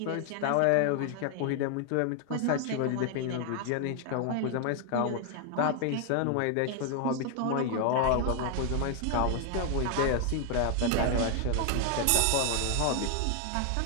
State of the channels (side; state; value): both; different; correlation 0.00